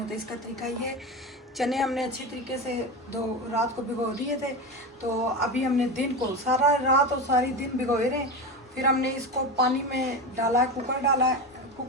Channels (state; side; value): normal; both; correlation 0.21